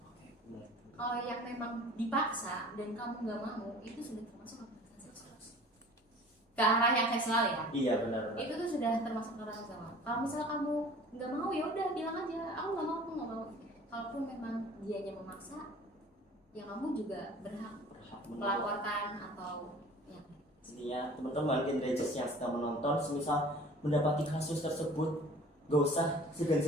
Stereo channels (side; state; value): both; normal; correlation 0.46